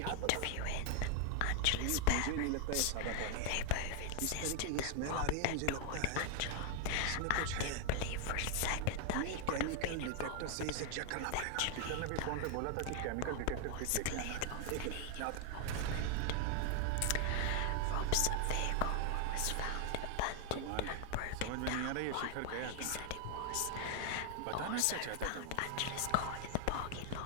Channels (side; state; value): both; different; correlation 0.00